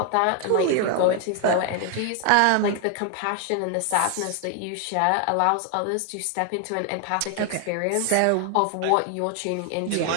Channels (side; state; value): both; different; correlation 0.00